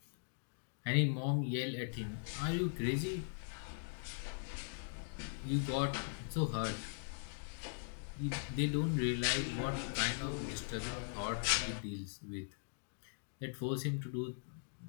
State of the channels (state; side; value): silent; right; digital silence